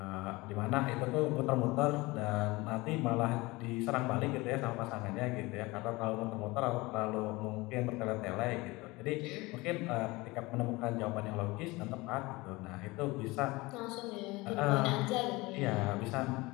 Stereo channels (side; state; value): right; quieter; 22.3 dB